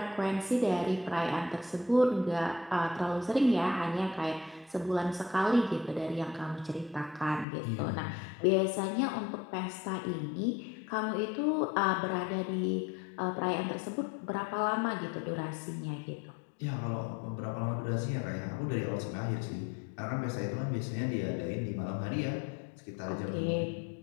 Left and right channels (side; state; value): right; drops out; at 7.5 s